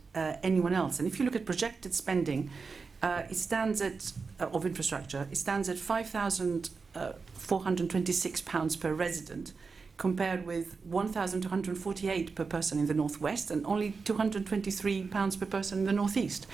anyone else. And if you look at projected spending, it stands at of infrastructure. It stands at £5,426 per resident, compared with £1,248 per person in the northwest and only £223 per person in the northeast.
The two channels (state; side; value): quieter; left; 4.7 dB